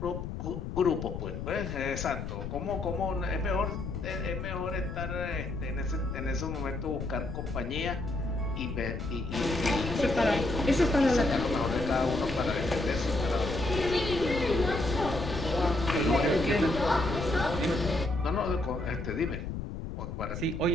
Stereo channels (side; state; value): left; noise; rumble, 6 dB below the sound